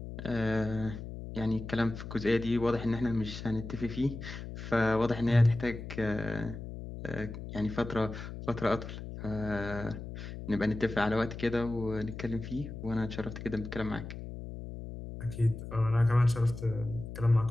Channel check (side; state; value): left; noise; hum, 9 dB below the sound